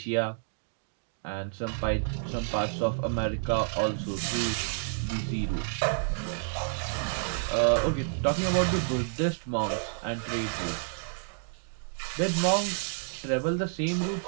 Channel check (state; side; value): silent; left; digital silence